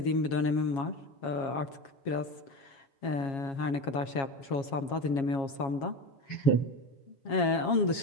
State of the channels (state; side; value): late; right; 7.3 ms